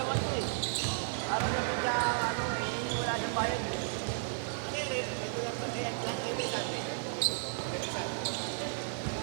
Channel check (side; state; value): left; silent; 55 dB below the other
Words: to eh. Para naman siya, ano eh, wala siyang bayad eh. Ano yun? Ito lang kasi yan lang kayo may sabi.